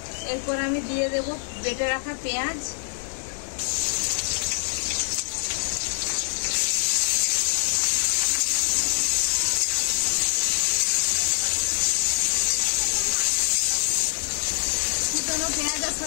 এরপর আমি দিয়ে দেব বেটে রাখা পেঁয়াজ। কুচনো পেঁয়াজের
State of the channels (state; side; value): silent; right; digital silence